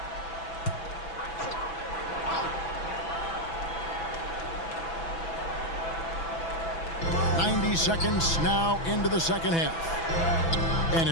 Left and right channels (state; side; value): late; right; 6.0 ms